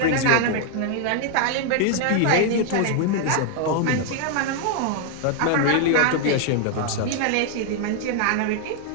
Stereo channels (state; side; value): different; both; correlation 0.00